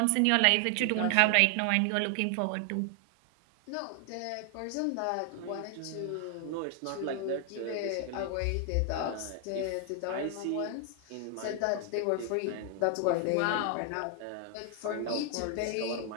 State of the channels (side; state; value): both; different; correlation 0.00